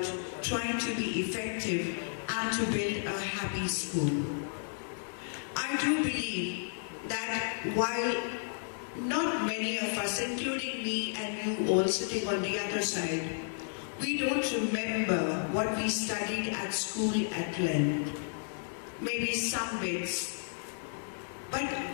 trying to be effective and to build a happy school. I do believe that while not many of us, including me and you all sitting on the other side, we don't remember what we studied at school at length, maybe some bits, but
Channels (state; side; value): silent; right; 56 dB below the other